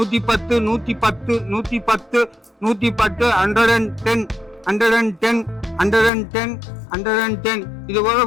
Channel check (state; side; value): drops out; right; at 6.1 s